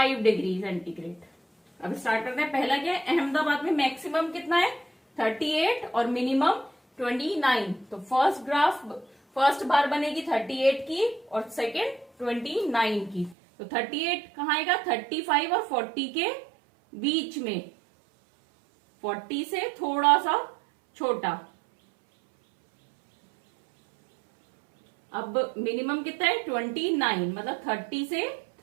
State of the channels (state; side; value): drops out; left; at 13.4 s